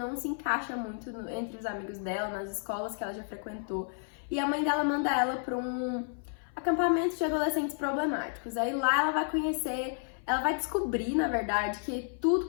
se encaixa muito entre os amigos dela, nas escolas que ela já frequentou. E a mãe dela manda ela para um acampamento de adolescentes problemáticos. Aí lá ela vai conhecer... Ela vai descobrir, na verdade, que tudo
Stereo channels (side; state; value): right; silent; 55 dB below the other